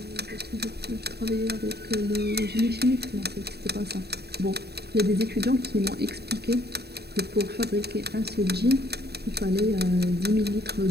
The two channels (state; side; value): late; left; 0.47 ms